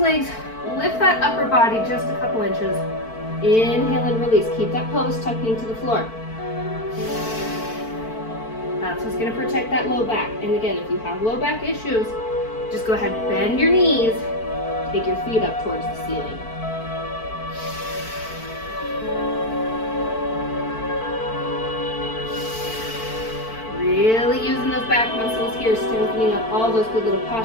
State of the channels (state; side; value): late; right; 4.5 ms